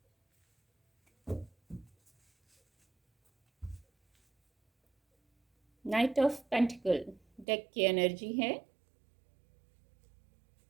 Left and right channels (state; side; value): drops out; left; at 7.5 s